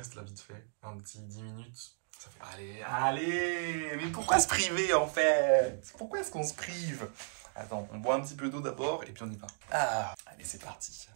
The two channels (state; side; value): silent; left; digital silence